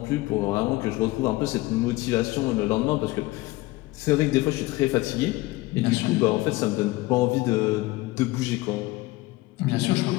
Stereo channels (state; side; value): quieter; right; 19.9 dB